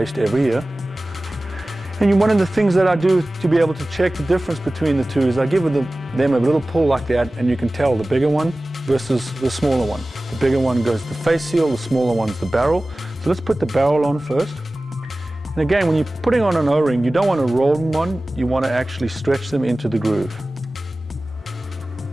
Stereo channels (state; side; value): normal; both; correlation 0.97